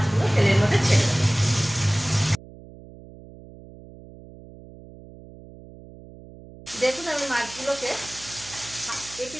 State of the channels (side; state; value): right; noise; hum, 19 dB below the sound